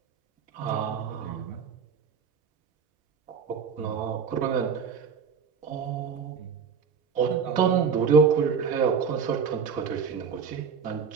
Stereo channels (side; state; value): left; quieter; 6.3 dB